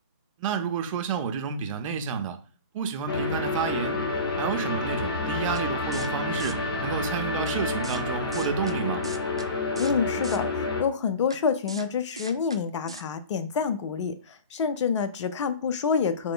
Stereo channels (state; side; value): inverted; both; correlation -0.33